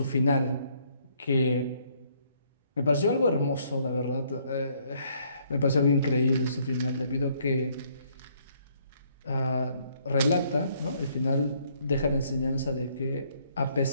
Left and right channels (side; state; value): both; inverted; correlation -0.67